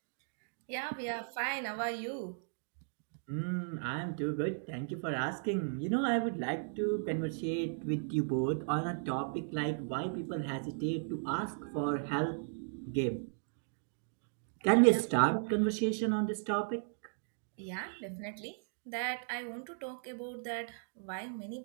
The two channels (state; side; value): silent; left; digital silence